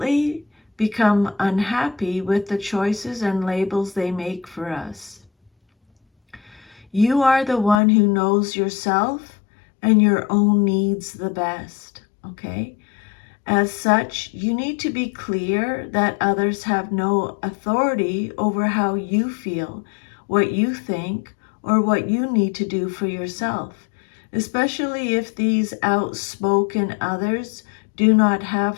become unhappy with the choices and labels they make for us. You are the one who knows yourself and your own needs the best, okay? As such, you need to be clear that others have no authority over how you feel, what you think, or what you need to do for yourself, especially if these outspoken others do not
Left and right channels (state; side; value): drops out; right; at 7.8 s